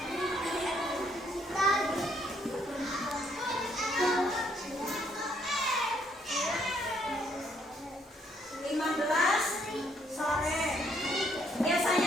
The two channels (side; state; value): both; normal; correlation 0.70